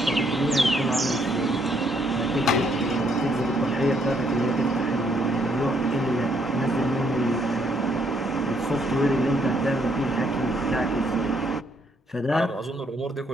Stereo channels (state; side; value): normal; both; correlation 0.70